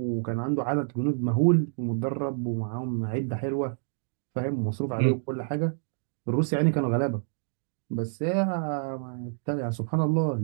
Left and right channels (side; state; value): left; silent; digital silence